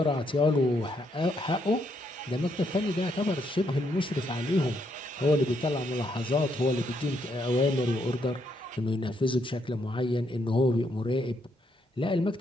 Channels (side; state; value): both; normal; correlation 0.75